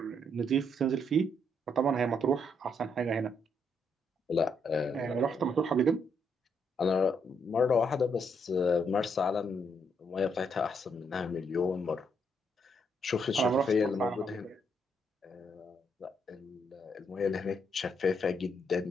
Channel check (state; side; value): normal; both; correlation 0.74